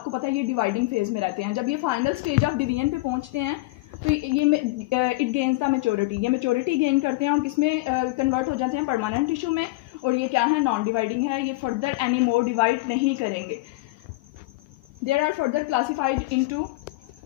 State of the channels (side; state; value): right; quieter; 21.5 dB